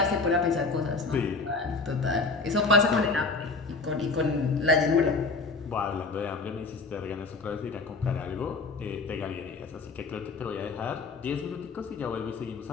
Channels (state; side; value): quieter; right; 4.0 dB